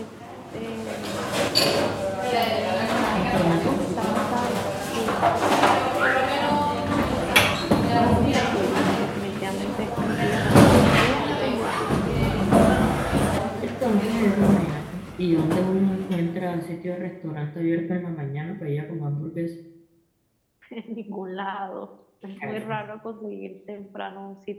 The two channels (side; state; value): both; identical; correlation 1.00